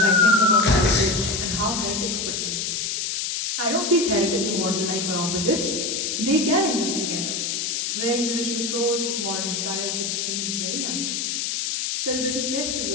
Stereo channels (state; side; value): noise; left; hiss, 1 dB below the sound